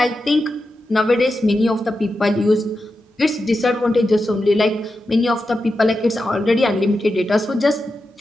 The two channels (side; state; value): both; normal; correlation 0.90